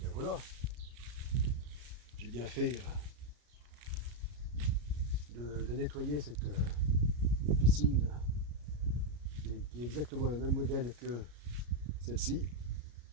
voilà. J'ai bien fait de nettoyer cette piscine qui est exactement le même modèle que celle-ci,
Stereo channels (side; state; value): left; late; 33 ms